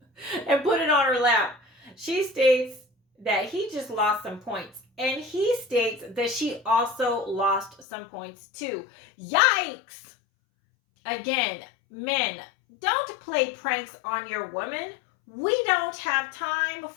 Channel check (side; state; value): right; drops out; at 7.9 s